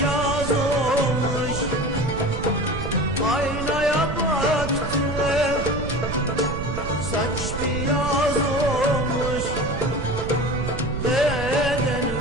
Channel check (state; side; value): noise; right; rumble, 6 dB below the sound